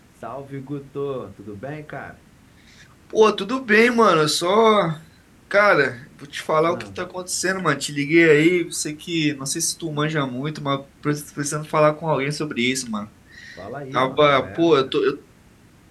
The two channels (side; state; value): both; identical; correlation 1.00